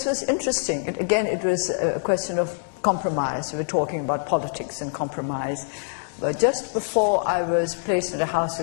was interesting. It was a question of compromise. We were talking about politics and compromise. But just before I was placed under house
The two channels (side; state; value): right; silent; digital silence